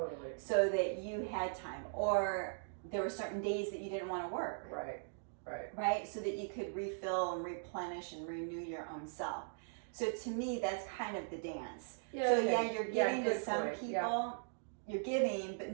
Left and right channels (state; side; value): silent; left; digital silence